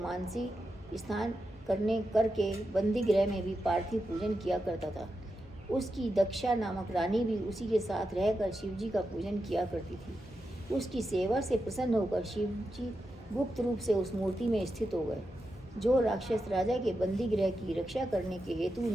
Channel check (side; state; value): both; normal; correlation 0.88